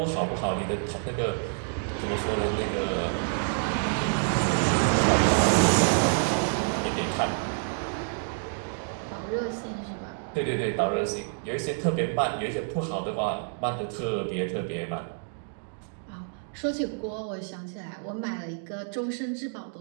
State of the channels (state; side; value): silent; left; digital silence